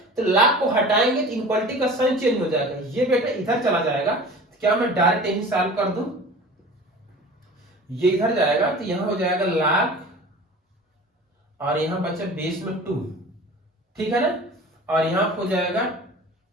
तो लाख को हटाएंगे तो इनक्वालिटी का साइन चेंज हो जाएगा, ये बेटा इधर चला जाएगा। तो क्या मैं डायरेक्ट यही सॉल्व कर दूं, ये इधर जाएगा तो यहां हो जाएगा लाख और यहां बचा बेस में 2, ठीक है ना, और यहां हो जाएगा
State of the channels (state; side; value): normal; both; correlation 0.40